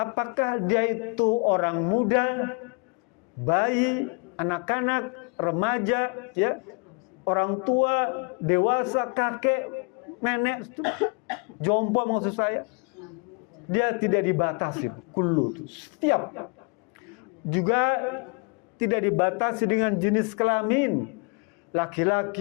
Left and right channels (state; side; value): quieter; right; 31.7 dB